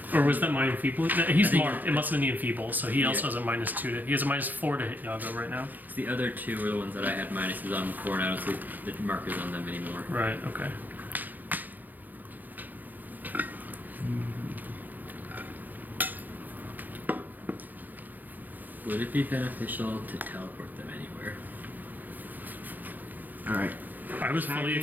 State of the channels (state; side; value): late; left; 0.084 ms